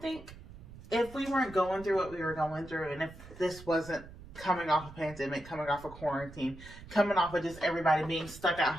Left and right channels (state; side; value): noise; right; rumble, 17 dB below the sound